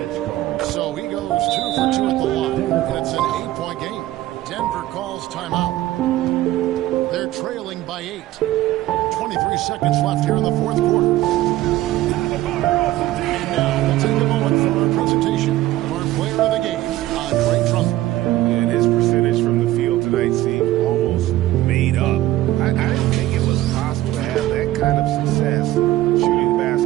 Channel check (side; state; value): left; quieter; 15.4 dB